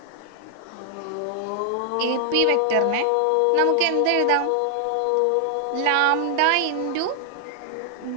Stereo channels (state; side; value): different; both; correlation 0.00